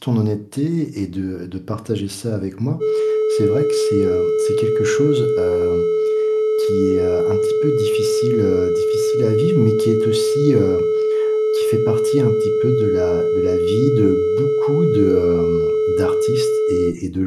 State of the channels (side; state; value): both; identical; correlation 1.00